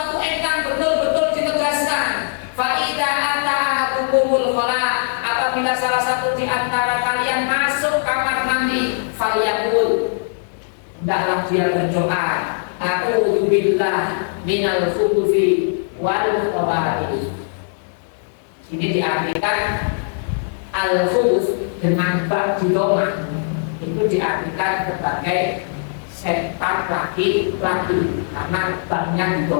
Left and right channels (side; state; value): right; silent; digital silence